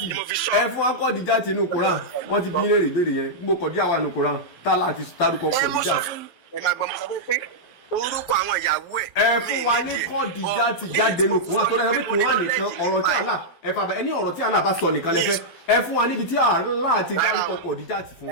ẹ fún wa Khadija tí nù Quran wọ́n ti bí léèrè ìbéèrè yẹn gbogbo Khadija wà nù Quran tá láti dárúkọ Khadija. Ẹ máa gbọ́ mo sọ pé orúkọ àwọn ìyàwó ẹ̀. Ẹ fún wa ní Khadija tí jáde nù Quran tó dáa pé Quran nìkan ọ̀rọ̀ tí Allah ẹ fà bẹ ẹni ọ̀rọ̀ tí Allah bá sọ nìkan lẹ fẹ́ ẹ fún wa níbi tí Allah ti dárúkọ Khadija tí fún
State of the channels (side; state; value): right; late; 12 ms